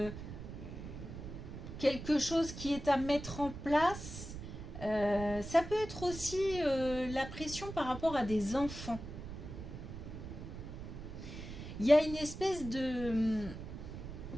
quelque chose qui est à mettre en place. Ça peut être aussi la pression par rapport à des enfants. Il y a une espèce de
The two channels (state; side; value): noise; right; rumble, 10 dB below the sound